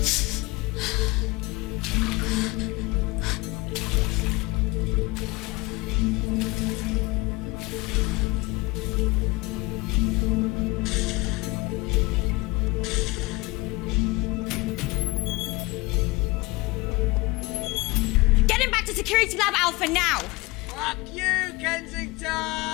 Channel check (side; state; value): right; quieter; 23.5 dB